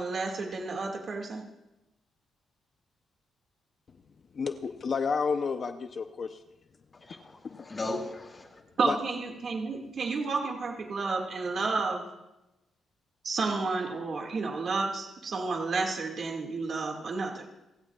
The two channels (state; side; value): normal; both; correlation 0.85